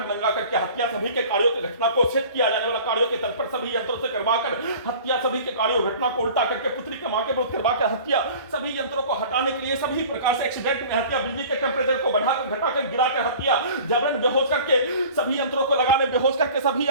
नंगा करके हत्या, सभी के कार्यों की घटना को सेट किया जाने वाला कार्यों के तल पर सभी यंत्रों से करवाकर हत्या, सभी के कार्यों घटना को उल्टा करके पुत्री के मां के विरुद्ध करवाकर हत्या, सभी यंत्रों को हटाने के लिए सभी प्रकार से एक्सीडेंट में हत्या, बिजली के टेम्परेचर को बढ़ाकर घटाकर गिराकर हत्या, जबरन बेहोश करके सभी यंत्रों को लगाने, बेहोश करके सभी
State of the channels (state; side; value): inverted; both; correlation -0.44